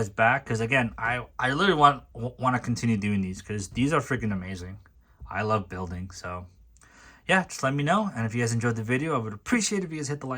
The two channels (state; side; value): identical; both; correlation 1.00